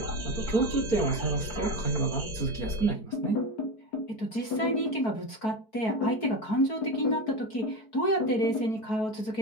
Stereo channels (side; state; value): right; late; 4.6 ms